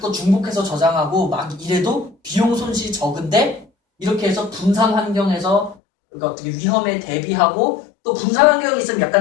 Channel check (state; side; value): drops out; right; at 5.8 s